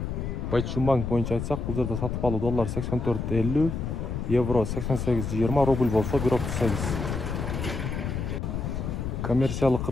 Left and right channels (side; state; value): left; noise; rumble, 3 dB below the sound